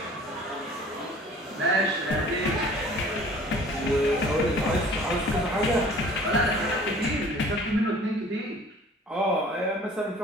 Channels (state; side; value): normal; both; correlation 0.49